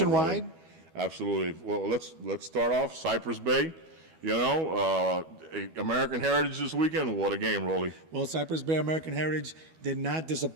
Absolutely. Well, let's start off Cypress Bay. You know, American Heritage this weekend. What a game, Rolly. Well, Cypress Bay American Heritage did not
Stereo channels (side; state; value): left; late; 12 ms